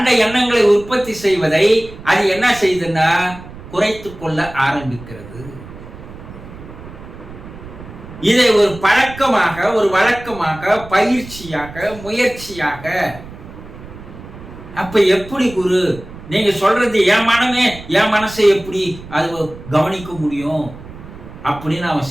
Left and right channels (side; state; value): right; noise; rumble, 16 dB below the sound